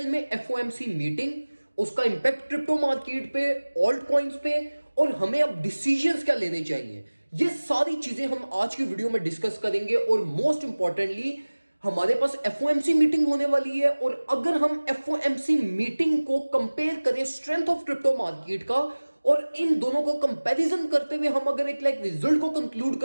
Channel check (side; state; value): both; inverted; correlation -1.00